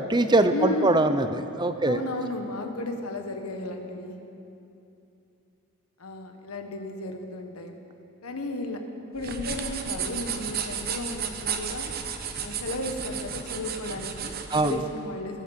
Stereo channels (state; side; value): normal; both; correlation 0.36